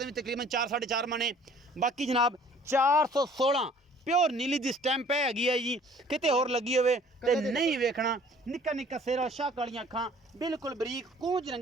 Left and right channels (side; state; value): both; normal; correlation 0.54